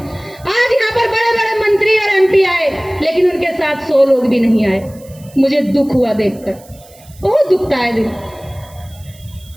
आज यहाँ पर बड़े बड़े मंत्री और एमपी आए, लेकिन उनके साथ 100 लोग भी नहीं आए। मुझे दुख हुआ देखकर, बहुत दुखता है दिल।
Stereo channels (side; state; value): right; noise; hiss, 25 dB below the sound